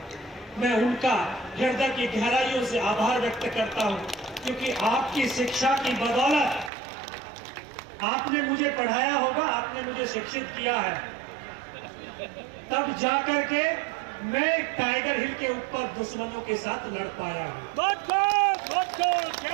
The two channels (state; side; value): drops out; left; at 6.7 s